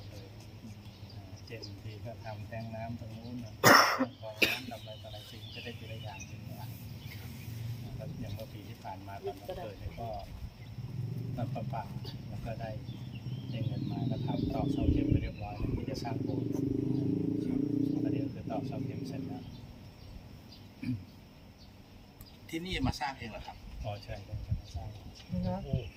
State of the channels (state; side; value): identical; both; correlation 1.00